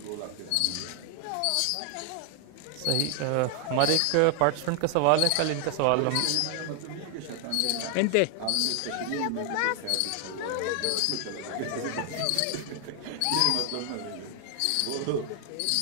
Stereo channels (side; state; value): both; different; correlation 0.00